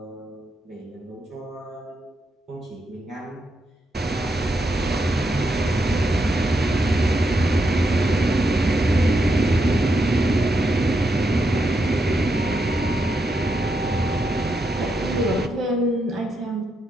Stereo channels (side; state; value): both; normal; correlation 0.82